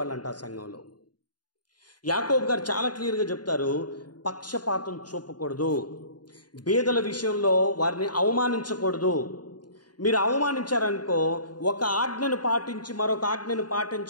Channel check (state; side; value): late; right; 0.70 ms